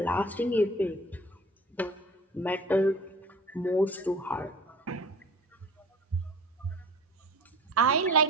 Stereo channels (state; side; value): normal; both; correlation 0.43